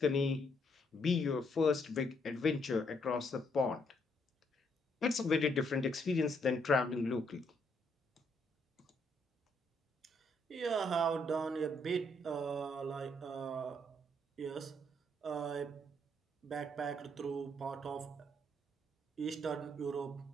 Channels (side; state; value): both; normal; correlation 0.72